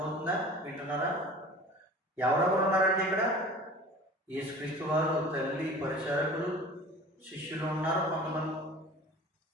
వింటున్నారా? ఎవరెవరు ఉన్నారండి ఇక్కడ? యేసుక్రీస్తు వారు, తల్లి, పరిచారకులు, శిష్యులు ఉన్నారు కొంతమంది.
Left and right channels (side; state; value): both; normal; correlation 0.41